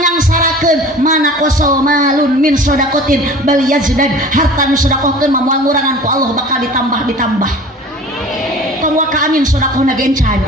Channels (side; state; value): both; normal; correlation 0.42